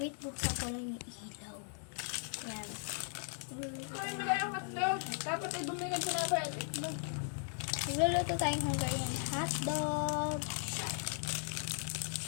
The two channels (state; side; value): silent; right; 53 dB below the other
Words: buksan ko lang yung ilaw. Yan. Dapat ay bumigay sa mga itlog. Magluluto tayong Hungarian hotdog.